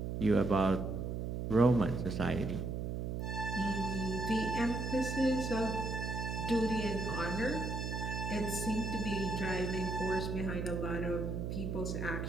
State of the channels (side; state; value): right; noise; hum, 3 dB below the sound